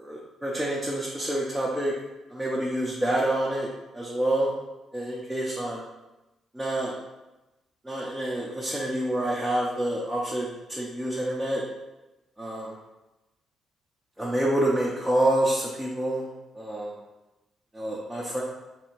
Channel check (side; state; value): both; normal; correlation 0.85